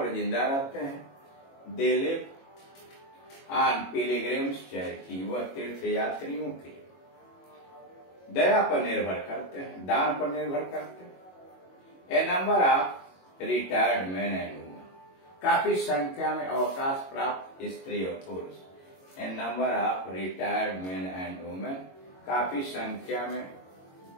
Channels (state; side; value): late; right; 22 ms